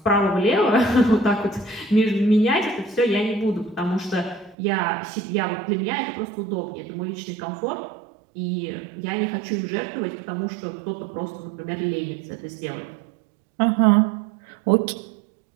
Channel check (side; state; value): left; drops out; at 4.5 s